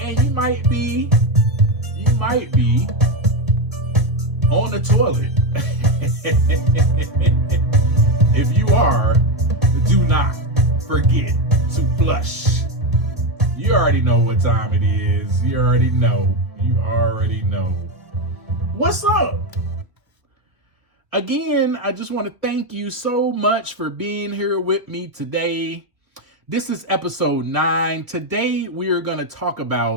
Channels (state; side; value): late; left; 1.6 ms